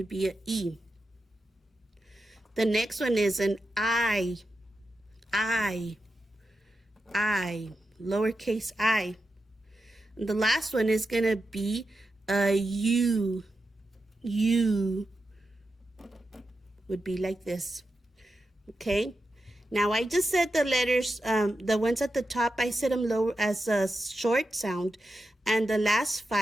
be an E. The next one is an I. I. I. Lowercase I. And the last one is going to be a U. U. Would be like this. Okay? Now, I just said the letters, the ones at the top, I said them low as a short sound, and the last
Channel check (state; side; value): normal; both; correlation 0.89